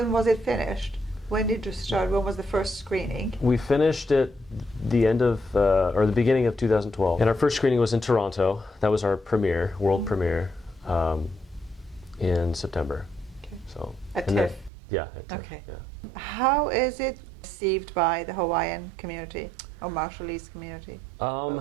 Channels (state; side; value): drops out; left; at 14.7 s